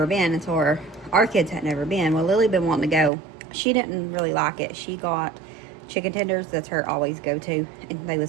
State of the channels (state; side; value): drops out; left; at 3.1 s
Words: been, and so our kids had never been. Well, Lily been wanting to go. She didn't really like it. She got chicken tenders. That's her always go-to, and they